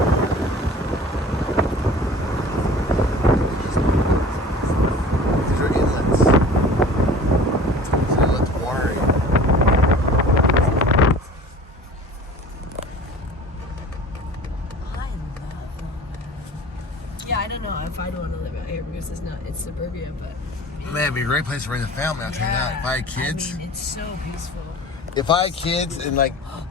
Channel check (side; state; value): both; normal; correlation 0.43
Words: These are inlets. So let the water in. Yeah, I don't know if I'd want to live out here because it's suburbia, but Man, it'd be a great place to raise a family, I'll tell you that. If I had kids. I mean, it's so peaceful. If I had kids and like.